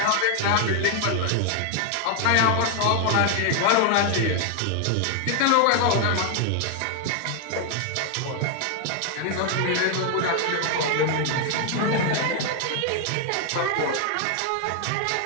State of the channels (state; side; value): different; both; correlation 0.00